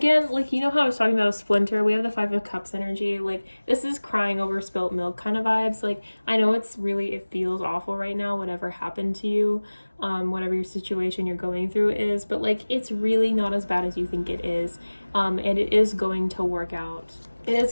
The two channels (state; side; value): inverted; both; correlation -1.00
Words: like, you know how I was talking about a splinter? We have the 5 of Cups energy. Like, this is crying over spilt milk kind of vibes. Like, I know it feels awful right now, whatever happened to you, whatever your situation you're going through is, but like, it's really not as bad as you think it is, and it is going to work out. It is